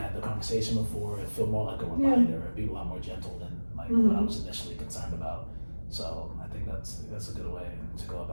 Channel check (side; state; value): both; inverted; correlation -1.00